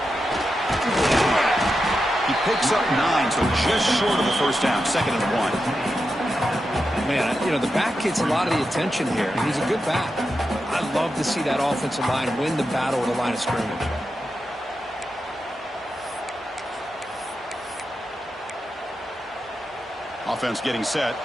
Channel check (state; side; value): normal; both; correlation 0.89